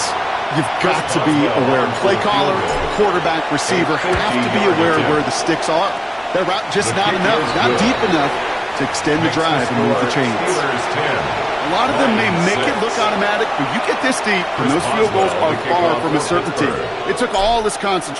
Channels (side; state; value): both; identical; correlation 1.00